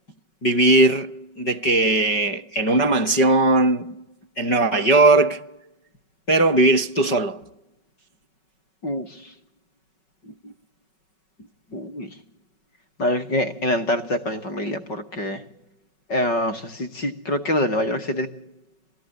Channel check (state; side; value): late; right; 5.3 ms